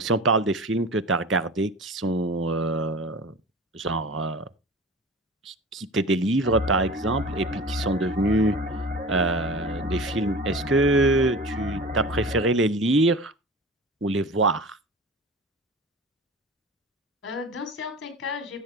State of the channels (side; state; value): both; normal; correlation 0.36